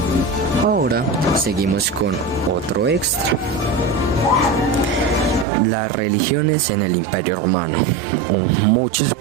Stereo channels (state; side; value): drops out; left; at 5.5 s